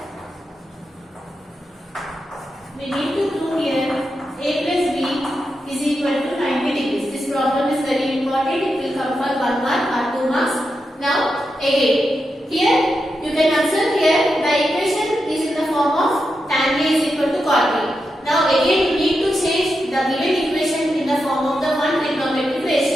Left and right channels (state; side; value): normal; both; correlation 0.87